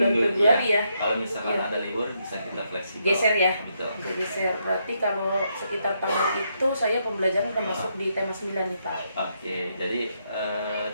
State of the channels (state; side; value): inverted; both; correlation -0.78